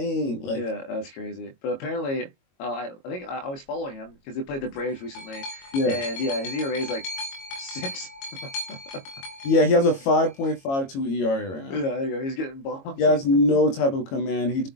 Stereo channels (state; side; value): late; right; 22 ms